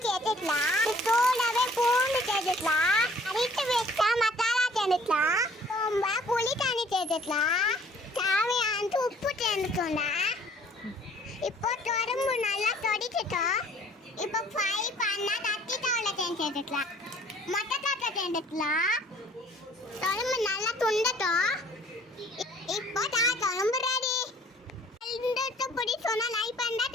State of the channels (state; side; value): normal; both; correlation 0.55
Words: எடுத்துக்கலாம். கூடவே பூண்டு சேர்த்துக்கலாம். அரைத்து வச்சா மசாலா சேர்த்துக்கலாம். ரொம்ப புளி தண்ணி சேர்த்துக்கலாம். தேவையான உப்பு சேர்த்துக்கோண்டா. இப்போ தொடம்பு நல்லா தொடிச்சிட்டோம். இப்போ ஃப்ரை பண்ண கத்திரிக்காயில் சேர்த்துக்கலாம். மொட்டைக்காய் சேர்த்துக்கலாம். தொடம்பு நல்லா துண்டட்டும். இப்போ தொடம்பு ரெடி. இந்த பிடிச்சோன்னா லைக் பண்ண,